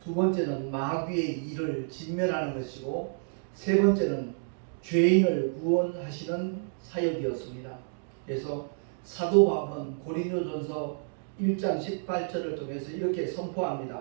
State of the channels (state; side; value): silent; left; digital silence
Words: 두 번째는 마귀의 일을 진멸하는 것이고, 세 번째는 죄인을 구원하시는 사역이었습니다. 그래서 사도 바울은 고린도전서 1장 18절을 통해서 이렇게